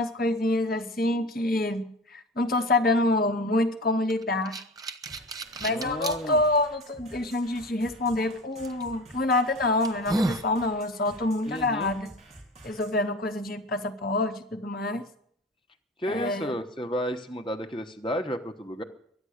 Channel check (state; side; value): normal; both; correlation 0.33